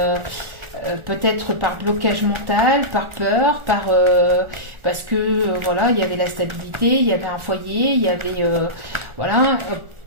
Peut-être par blocage mental, par peur, parce que voilà, il y avait la stabilité, il y avait un foyer, il y avait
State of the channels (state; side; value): late; left; 1.4 ms